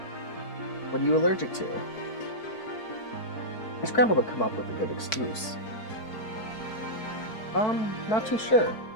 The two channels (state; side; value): late; right; 4.6 ms